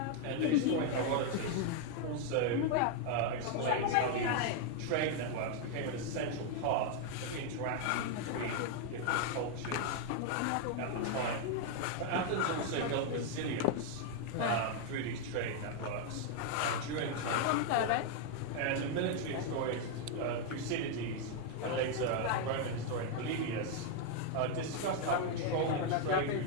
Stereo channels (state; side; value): different; both; correlation 0.00